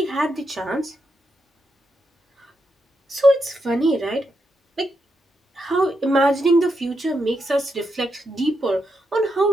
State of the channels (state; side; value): normal; both; correlation 0.83